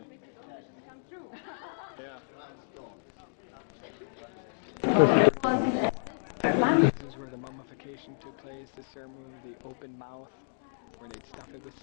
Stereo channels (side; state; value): right; silent; digital silence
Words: Yeah. This is where the mummification took place, the ceremony of the open mouth, where they'd stuff it with